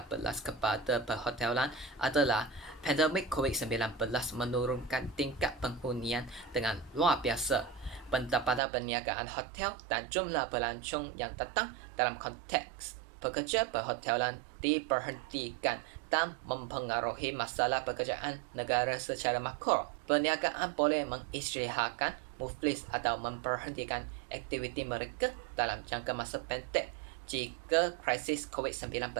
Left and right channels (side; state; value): left; drops out; at 8.6 s